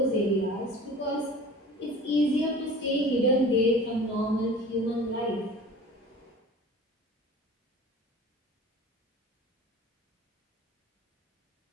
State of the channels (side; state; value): both; normal; correlation 0.41